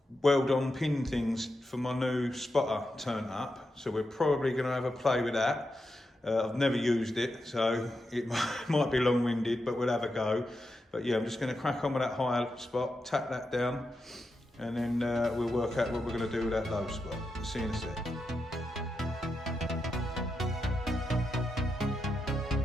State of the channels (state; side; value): normal; both; correlation 0.87